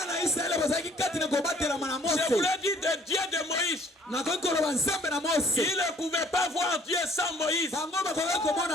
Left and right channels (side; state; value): both; normal; correlation 0.58